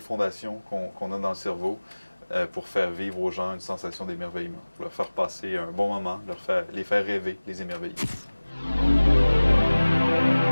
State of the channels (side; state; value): both; inverted; correlation -1.00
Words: qu'on a dans le cerveau pour faire vivre aux gens une sensation d'émerveillement, pour leur faire passer un bon moment, les faire rêver, les émerveiller.